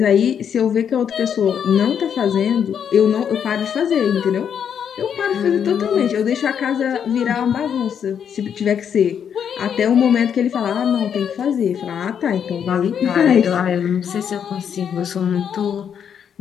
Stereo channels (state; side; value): quieter; right; 8.1 dB